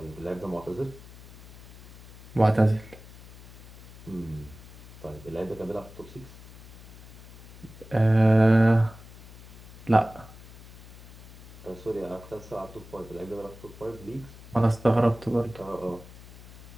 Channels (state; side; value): noise; left; hum, 17 dB below the sound